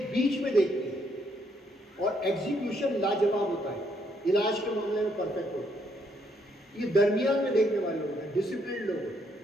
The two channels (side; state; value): both; normal; correlation 0.72